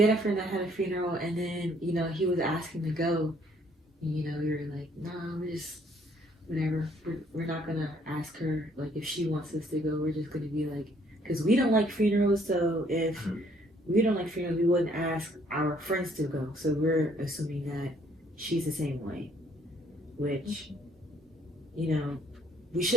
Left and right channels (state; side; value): normal; both; correlation 0.64